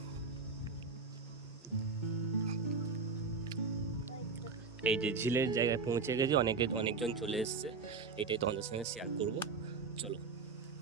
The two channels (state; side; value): quieter; left; 4.6 dB